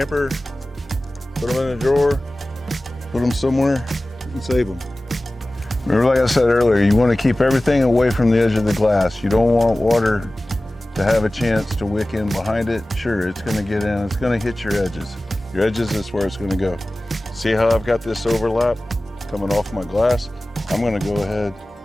put them in a drawer, put them somewhere and save them. Remember, like I said earlier, you want to keep everything away from the edge of the glass. You don't want water to have a chance to wick in behind it. Sure, it's going to get in, it's going to hit your edges. Your edges is where it's going to go. See how I've got this overlap coming off my glass? I'm going to go ahead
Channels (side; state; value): both; normal; correlation 0.97